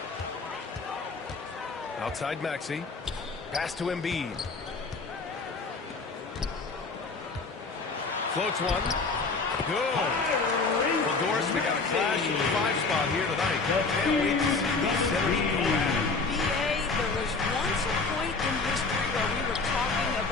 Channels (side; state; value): right; quieter; 4.1 dB